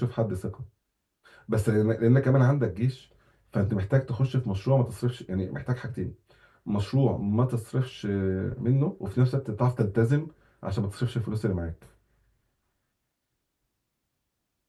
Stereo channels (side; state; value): both; identical; correlation 1.00